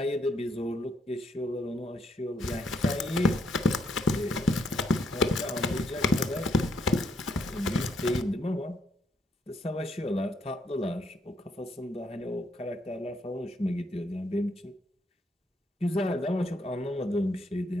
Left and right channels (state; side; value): normal; both; correlation 0.74